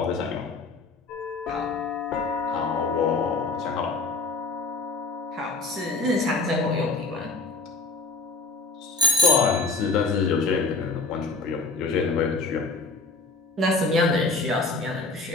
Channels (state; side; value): quieter; right; 3.5 dB